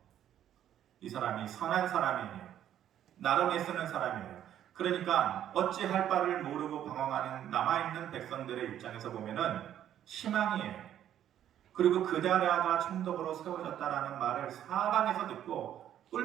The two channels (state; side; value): quieter; left; 10.8 dB